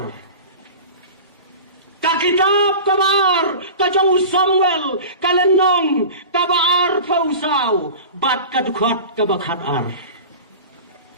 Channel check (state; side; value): inverted; both; correlation -0.34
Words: ka kitab kabaar kajong Samuel kalenong kabaar pausau bat kadukhat kabakhatar